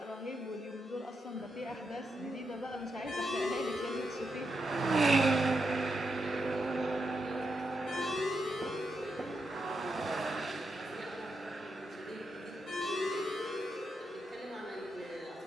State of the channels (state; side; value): normal; both; correlation 0.84